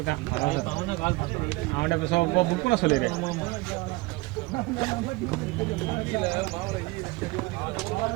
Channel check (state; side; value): quieter; left; 22.4 dB